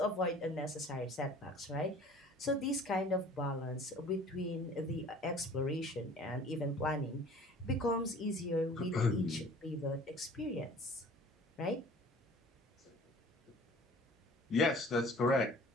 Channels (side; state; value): both; normal; correlation 0.48